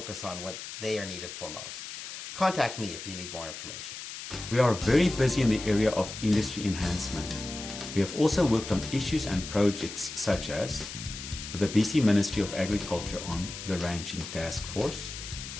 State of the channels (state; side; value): noise; left; hiss, 10 dB below the sound